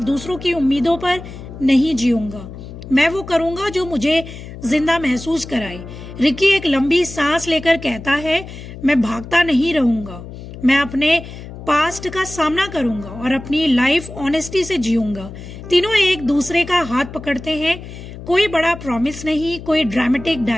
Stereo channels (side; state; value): left; noise; hum, 13 dB below the sound